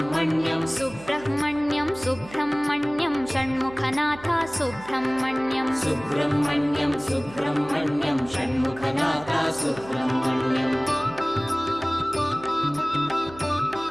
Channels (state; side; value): noise; right; hum, 18 dB below the sound